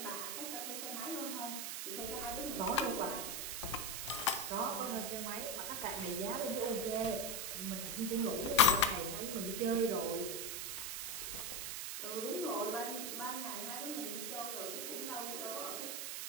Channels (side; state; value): right; noise; hiss, 3 dB below the sound